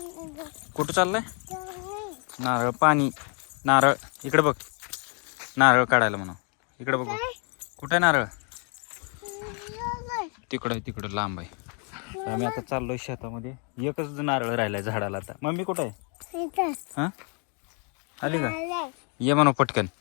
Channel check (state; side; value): quieter; right; 37.5 dB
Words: कुठं चाललाय? नारळ पाणी. नारळ इकडे बघ. नारळ काढायला म्हणा. इकडे बघ. कुठं आहे नारळ? तिकडं लांब आहे. आम्ही आता चाललोय शेतामध्ये. एकच नारळ राहिलाय झाडाला आता. मम्मी कुठं आहे? हा आली का? ये म्हणाव पटकन.